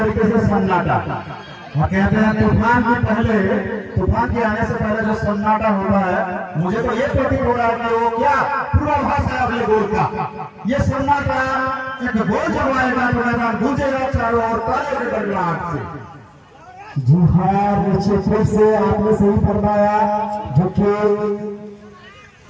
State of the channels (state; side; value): identical; both; correlation 1.00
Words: से सन्नाटा। और कहते हैं तूफान के आने से पहले जो सन्नाटा होता है, मुझे तो ये प्रतीत हो रहा है कि वो क्या पूर्वाभास है अगले गोल का। ये सन्नाटा एक गोल जब आएगा तो मैदान गूंजेगा चारों ओर तालियों की गड़गड़ाहट से। जी हाँ, निश्चित रूप से आपने सही फरमाया। जो कि